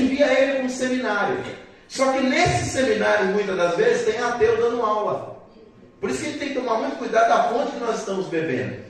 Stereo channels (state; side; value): identical; both; correlation 1.00